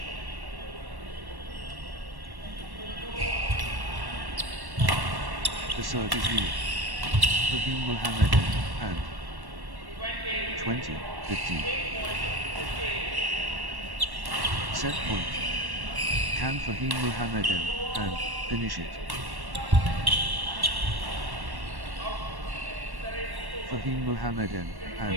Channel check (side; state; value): left; late; 1.1 ms